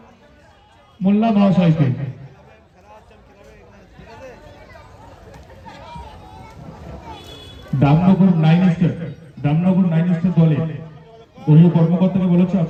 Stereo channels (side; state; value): both; identical; correlation 1.00